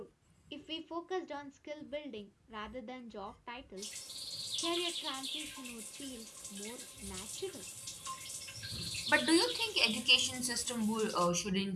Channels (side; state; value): both; identical; correlation 1.00